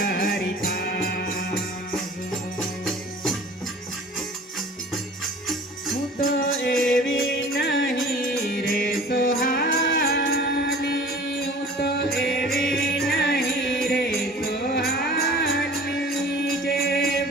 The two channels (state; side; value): normal; both; correlation 0.44